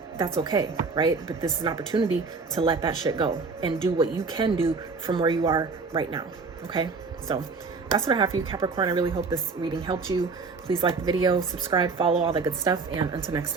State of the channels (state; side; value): quieter; left; 4.4 dB